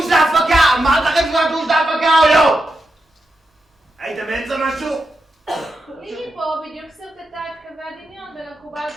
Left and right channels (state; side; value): normal; both; correlation 0.87